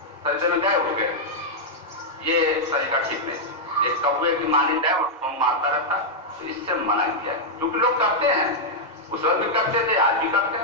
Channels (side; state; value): both; normal; correlation -0.05